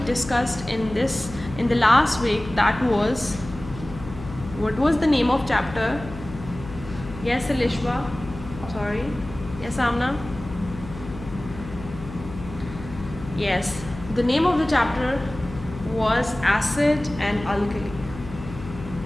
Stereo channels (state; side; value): noise; left; hum, 13 dB below the sound